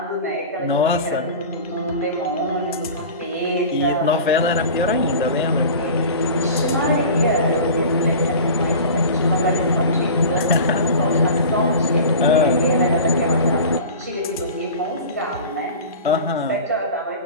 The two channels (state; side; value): inverted; both; correlation -0.36